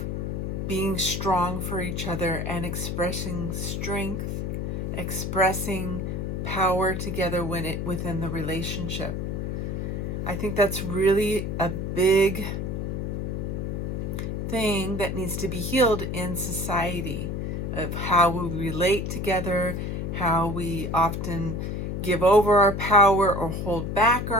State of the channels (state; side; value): noise; left; hum, 3 dB below the sound